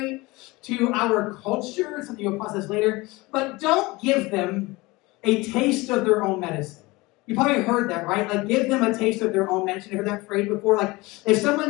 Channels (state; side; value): quieter; right; 22.4 dB